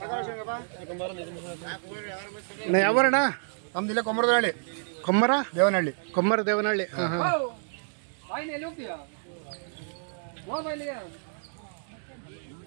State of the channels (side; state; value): left; silent; digital silence